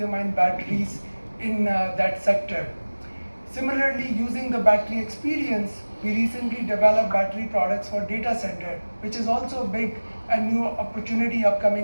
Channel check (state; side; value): inverted; both; correlation -1.00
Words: batteries in that sector. Similarly, using the battery experience, we recently developed battery products for data center, which is also a big and new opportunity